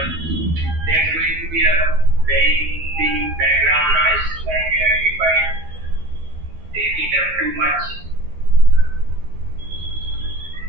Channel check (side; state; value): left; late; 12 ms